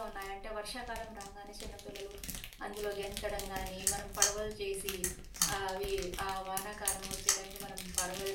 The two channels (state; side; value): identical; both; correlation 1.00